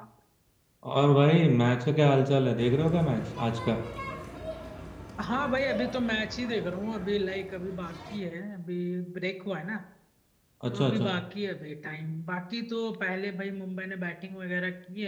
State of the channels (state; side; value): identical; both; correlation 1.00